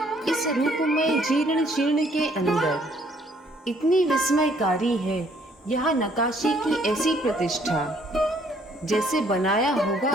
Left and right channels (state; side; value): normal; both; correlation 0.64